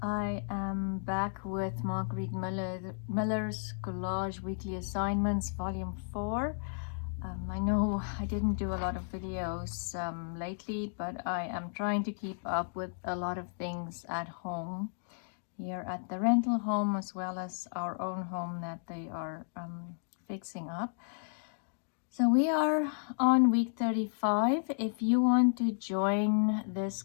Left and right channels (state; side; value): silent; right; digital silence